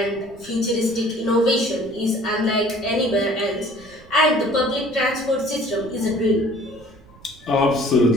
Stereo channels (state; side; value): noise; right; rumble, 24 dB below the sound